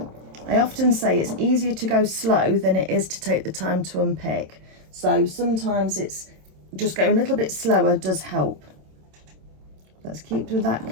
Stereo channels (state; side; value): late; left; 27 ms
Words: I often say it's easier to go slow than it is to take the time to unpick. So sometimes it's just going a little bit slower does help. Let's keep with that